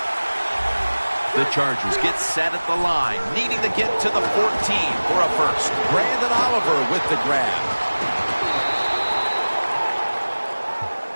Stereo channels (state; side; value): inverted; both; correlation -1.00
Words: The Chargers get set at the line, needing to get to the 14 for a first. Brandon Oliver with the grab.